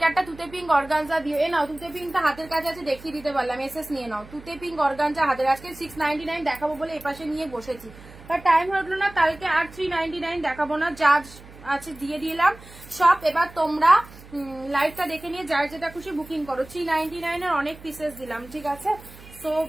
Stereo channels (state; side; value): noise; right; hum, 19 dB below the sound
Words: একটা তুতে পিঙ্ক অর্গানজা দিও, এ নাও তুতে পিঙ্কটা হাতের কাছে আছে, দেখিয়ে দিতে পারলাম, এসএস নিয়ে নাও। তুতে পিঙ্ক অর্গানজা হাতের, আজকে 699 দেখাবো বলে এপাশে নিয়ে বসেছি, বাট টাইম হলো না, কালকে আর 399 দেখাবো না, যা আছে দিয়ে দিলাম সব। এবার তোমরা লাইভটা দেখে নিয়ে যার যেটা খুশি বুকিং করো। 399 এর অনেক পিসেস দিলাম, ঠিক আছে? সো